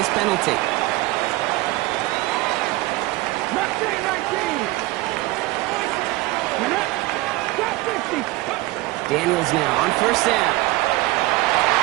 penalty. Daniels now on 1st down.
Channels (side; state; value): left; quieter; 19.8 dB